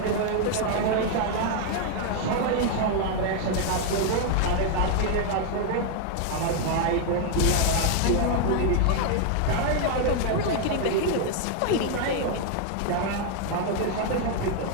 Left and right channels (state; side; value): different; both; correlation 0.00